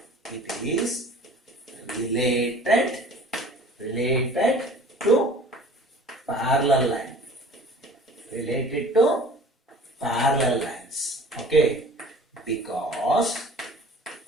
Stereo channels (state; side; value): normal; both; correlation 0.47